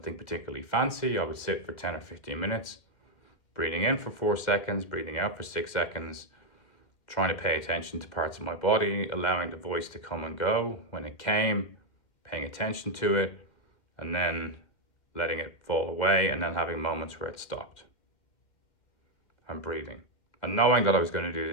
particularly fancy. I would sit for 10 or 15 minutes, breathing in for 4 seconds, breathing out for 6 seconds, trying to pay attention to parts of my body, allowing the voice to come and go when it came, paying attention to it, and then letting it fall away, and then having moments where it stopped. And breathing, and knowing that I was going to do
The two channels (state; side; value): late; right; 2.1 ms